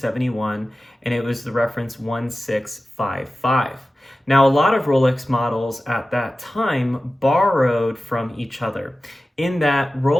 and it was the reference 1655. Now, a lot of Rolex models at that time borrowed from each other, in that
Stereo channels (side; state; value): both; normal; correlation 0.95